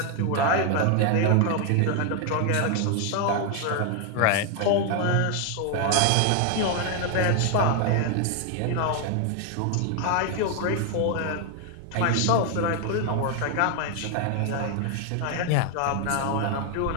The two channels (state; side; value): different; both; correlation 0.00